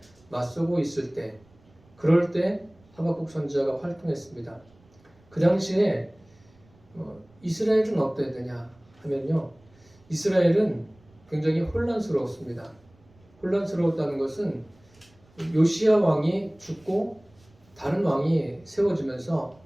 맞서고 있을 때, 그럴 때 하박국 선지자가 활동했습니다. 그 당시에 이스라엘은 어땠느냐 하면요, 이스라엘은 굉장히 혼란스러웠습니다. 혼란스러웠다는 것은 요시야 왕이 죽고 다른 왕이 세워지면서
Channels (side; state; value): right; noise; rumble, 30 dB below the sound